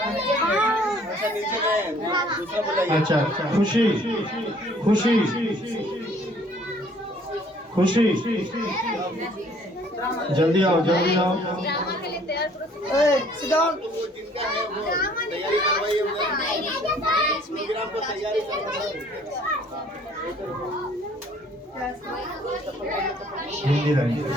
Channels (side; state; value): both; normal; correlation 0.58